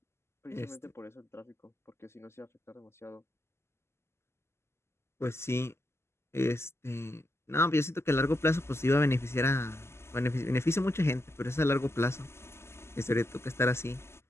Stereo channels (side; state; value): right; late; 0.12 ms